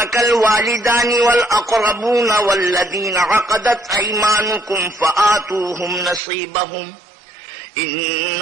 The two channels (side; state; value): left; drops out; at 6.2 s